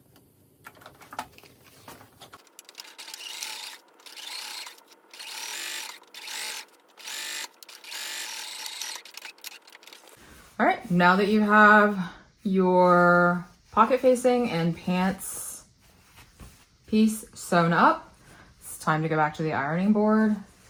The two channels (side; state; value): both; identical; correlation 1.00